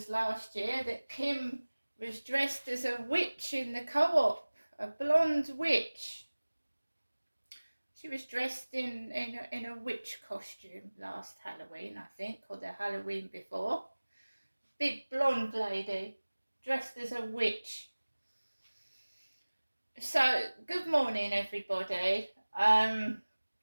last year that Kim was dressed as a witch in the co-op, a blonde witch. She was dressed in a witch costume last Halloween, I think, or the Halloween before. Big blonde lady dressed as a witch. So, good morning, everybody.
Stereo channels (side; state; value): both; inverted; correlation -1.00